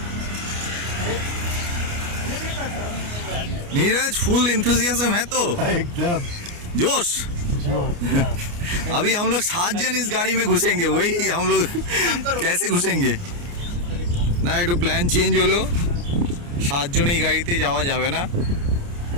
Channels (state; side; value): late; left; 29 ms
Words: नीरज फुल इंथुजियाज्म है तो एकदम जोश। अभी हम लोग 7 जन इस गाड़ी में घुसेंगे, वही हम लोग कैसे घुसेंगे না, একটু প্ল্যান চেঞ্জ হলো। 7 জন এই গাড়িতে যাওয়া যাবে না,